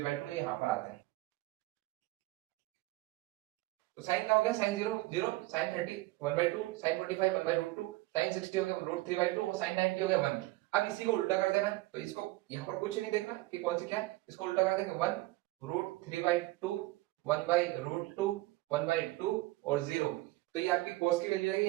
ये यहाँ पर आता है। तो साइन का हो गया साइन 0 0, साइन 30 1/2, साइन 45 1/√2, साइन 60 हो गया √3/2 और साइन 90 हो गया 1। अब इसी को उल्टा कर देना, तो इसको यहाँ पर कुछ नहीं देखना कि कौन सी क्या है, इसको उल्टा कर देंगे 1 √3/2 1/√2 1/2 और 0। तो ये आपकी cos की वैल्यू आएगी,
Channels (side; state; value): left; quieter; 19.8 dB